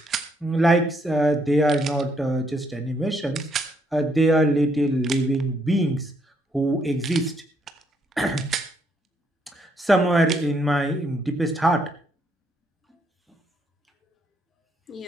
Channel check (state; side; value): normal; both; correlation 0.72